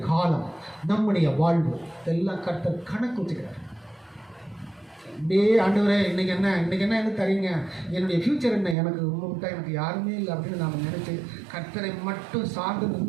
காலம், நம்முடைய வாழ்வு எல்லாம் கர்த்தர் கணக்கு வச்சுக்கிறார். அப்படியே ஆண்டவரே இன்னைக்கு என்ன என்ன தரீங்க, என்னுடைய ஃப்யூச்சர் என்ன, எனக்கு உங்களை விட்டா எனக்கு யாருமே இல்லை அப்படின்னு நாம் நினச்சி கர்த்தரை மட்டும் சார்ந்து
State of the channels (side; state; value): left; drops out; at 8.8 s